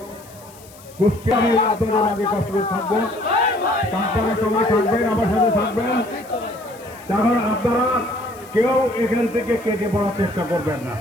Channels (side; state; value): left; noise; hiss, 23 dB below the sound